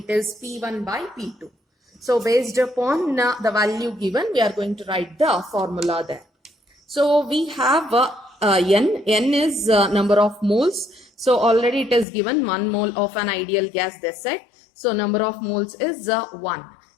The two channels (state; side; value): drops out; right; at 12.1 s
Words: is P1 by P2. So based upon the value given, we are going to write the formula there. So we have N is number of moles. So already it is given 1 mole of an ideal gas, they said. So number of moles is 1.